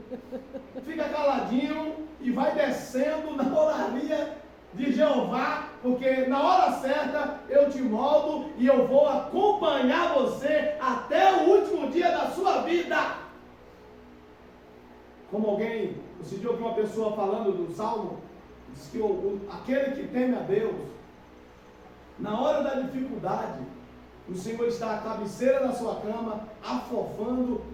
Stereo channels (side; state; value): both; identical; correlation 1.00